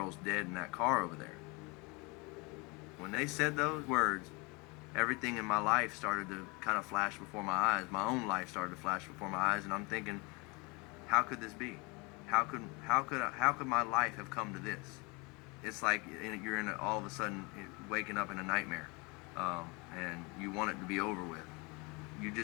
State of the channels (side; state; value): right; quieter; 28.2 dB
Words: dead in that car over there. When they said those words, everything in my life started to kind of flash before my eyes. My own life started to flash before my eyes, and I'm thinking, how could this be? How could my life have come to this? It's like you're all of a sudden waking up in a nightmare, and you want it to be over with. You